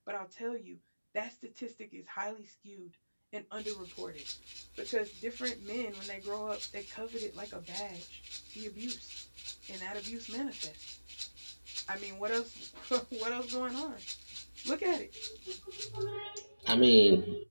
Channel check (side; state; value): both; inverted; correlation -1.00